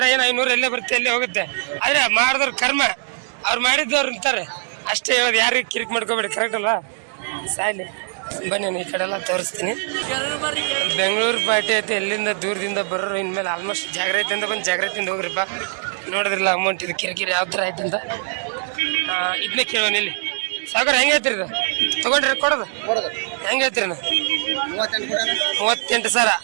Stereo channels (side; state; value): left; silent; digital silence